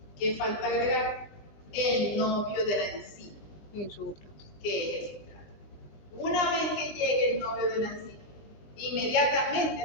¿Qué falta agregar? El novio de la enzima, Y el sustrato. que es el sustrato. Una vez que llegue el novio de la enzima, inmediatamente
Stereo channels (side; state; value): right; late; 20 ms